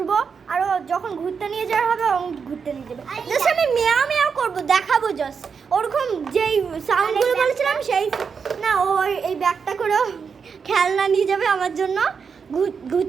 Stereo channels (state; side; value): quieter; left; 6.0 dB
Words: আর যখন ঘুরতে নিয়ে যাওয়া হবে ঘুরতে নিয়ে যাবে। জাস্ট আমি মেয়াও মেয়াও করবো, দেখাবো জাস্ট ওরকম যেই সাউন্ডগুলো বলেছিলাম সেই না। ও এই ব্যাগটা করে খেলনা নিয়ে যাবে আমার জন্য,